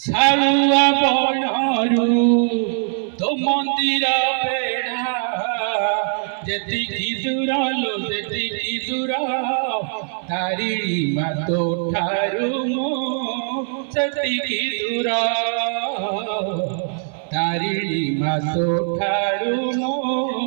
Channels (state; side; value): silent; left; 61 dB below the other